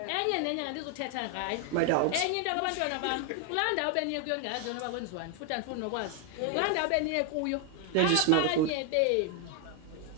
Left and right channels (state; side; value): different; both; correlation 0.01